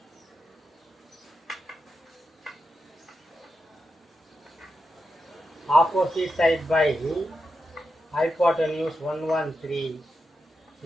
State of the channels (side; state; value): both; normal; correlation 0.88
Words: opposite side by hypotenuse 113.